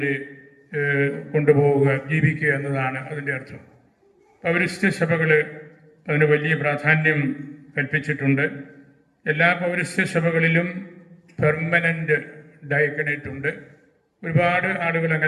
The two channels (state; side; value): identical; both; correlation 1.00